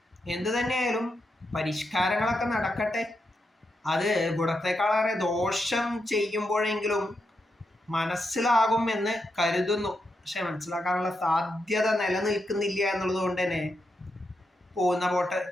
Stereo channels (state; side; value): normal; both; correlation 0.84